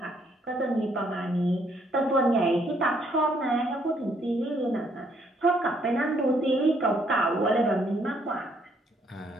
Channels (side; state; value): both; normal; correlation 0.69